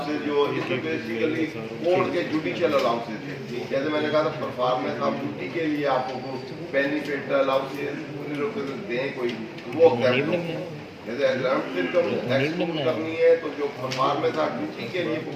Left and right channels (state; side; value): identical; both; correlation 1.00